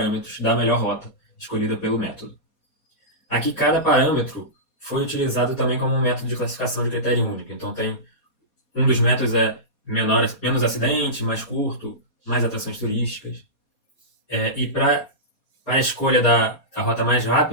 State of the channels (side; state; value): right; late; 4.2 ms